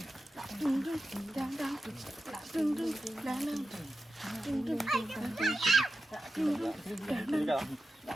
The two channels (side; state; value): both; normal; correlation 0.91